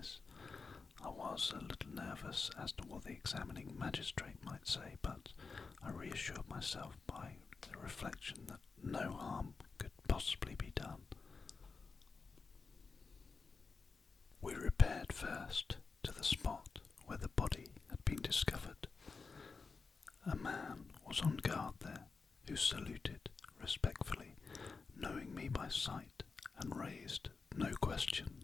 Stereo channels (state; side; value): quieter; right; 4.6 dB